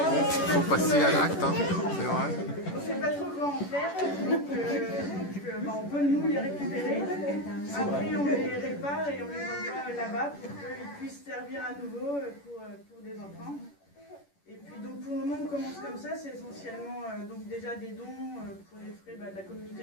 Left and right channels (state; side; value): late; right; 11 ms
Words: faut passer à l'acte, hein, c'est vrai. On ne sait pas trop quoi en faire, donc on peut nous les récupérer. Après on les répare et on les envoie là-bas pour qu'ils puissent servir à nouveau pour des enfants. Et puis donc pour le moment on commence comme ça, c'est essentiellement donc déjà des dons pour les frais de la